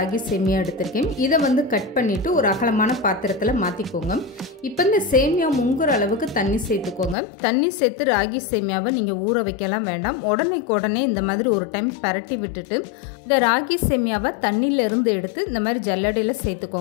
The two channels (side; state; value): right; drops out; at 7.2 s